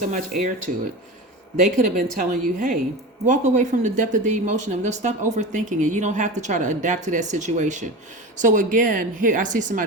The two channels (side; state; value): both; normal; correlation 0.28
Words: much air to it? They could have been telling you, hey, walk away from the depth of the emotion of it. Stop overthinking it. You don't have to try to adapt to that situation. So again, here I see